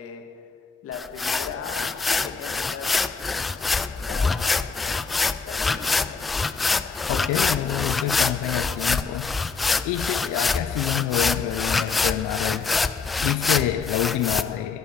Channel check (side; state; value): right; quieter; 5.2 dB